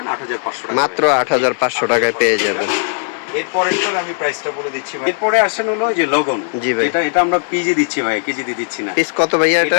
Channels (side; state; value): right; silent; 58 dB below the other